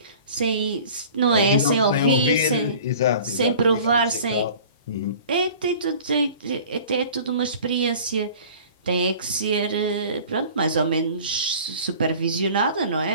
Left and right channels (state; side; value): inverted; both; correlation -0.45